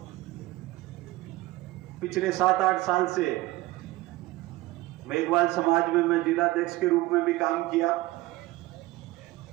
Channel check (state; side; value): quieter; left; 18.6 dB